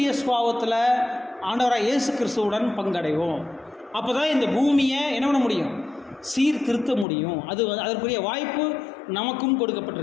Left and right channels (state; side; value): drops out; right; at 7.1 s